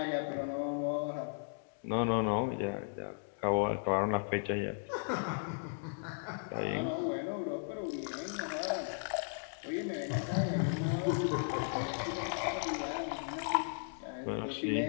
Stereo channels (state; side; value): silent; right; digital silence